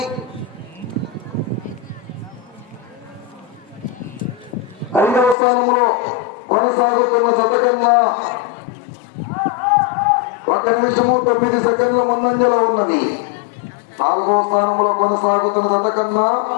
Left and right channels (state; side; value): drops out; right; at 5.4 s